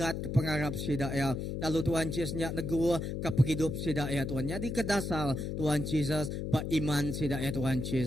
ke pengarap sidak ya. Lalu Tuhan Yesus nyak negu ke penghidup sidak ya Tuhan. Nyadi ke dasar Tuhan Yesus beriman sidak ya Tuhan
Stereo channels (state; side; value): noise; left; hum, 3 dB below the sound